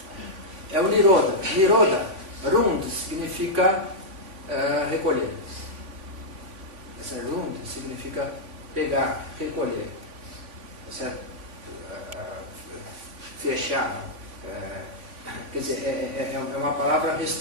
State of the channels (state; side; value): late; left; 3.5 ms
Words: É o Nirodha. Nirodha, Rund, significa recolher. Essa Rund significa pegar, recolher. Certo? Fechar. Quer dizer, é uma palavra